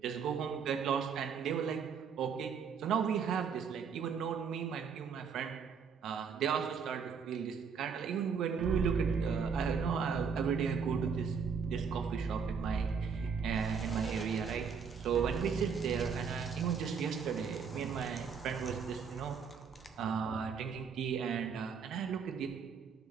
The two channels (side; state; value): left; quieter; 6.3 dB